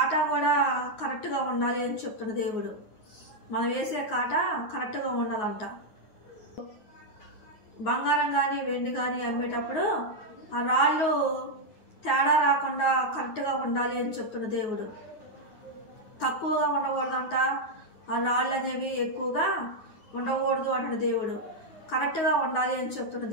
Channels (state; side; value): late; right; 9.4 ms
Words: కూడా కరెక్ట్గా ఉండాలి అని చెప్తున్న దేవుడు. మనం వేసే కాటా కరెక్ట్గా ఉండాలంట. బంగారం కానీ వెండి కానీ అమ్మేటప్పుడు ఆ రాళ్ళు తేడా రాకుండా కరెక్ట్గా ఉండాలి అని చెప్తున్న దేవుడు. తక్కువగా ఉండకూడదంట, ఆ రాళ్ళు అనేవి ఎక్కువగా ఉండకూడదు అంటున్న దేవుడు. కరెక్ట్గా ఉండాలి అని చెప్తున్న